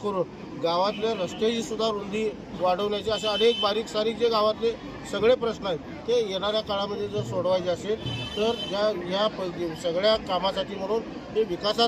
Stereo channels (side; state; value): both; identical; correlation 1.00